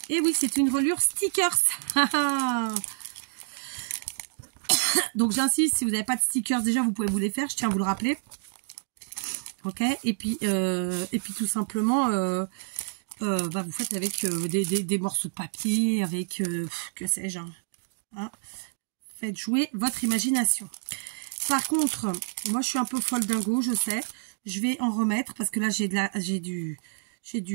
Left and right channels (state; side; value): silent; left; digital silence